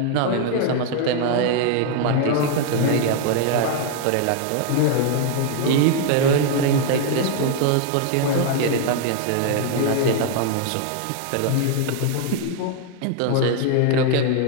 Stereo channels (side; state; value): both; different; correlation 0.00